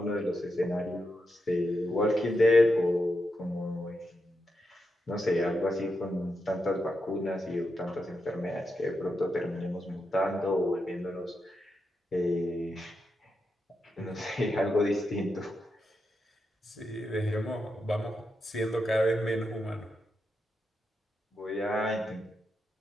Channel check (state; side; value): normal; both; correlation 0.85